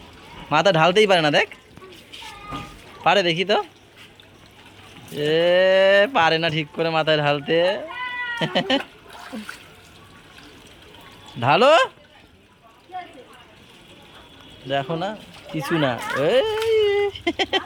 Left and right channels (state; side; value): identical; both; correlation 1.00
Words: মাথা ঢালতেই পারে না, দেখ পারে দেখি তো। এ পারে না ঠিক করে মাথায় ঢালতে। ঢালো, দেখো না কিছু না।